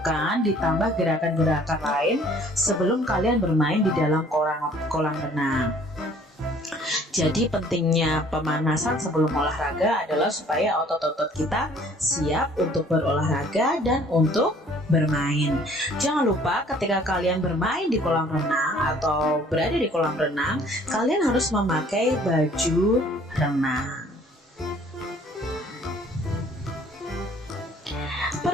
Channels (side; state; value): both; normal; correlation 0.56